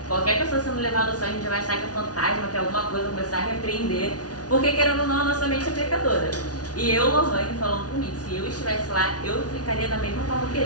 qualquer pessoa sendo levada ao céu, a gente já vai achar que é fantasma, que é alguma coisa, começar a repreender, porque querendo ou não, a nossa mente é pecadora. E eu, Lohane, falando comigo, se eu estivesse lá, eu ficaria da mesma forma que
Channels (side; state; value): right; late; 0.68 ms